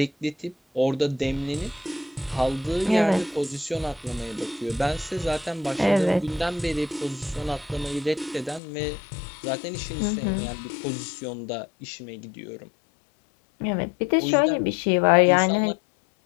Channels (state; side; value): drops out; right; at 8.6 s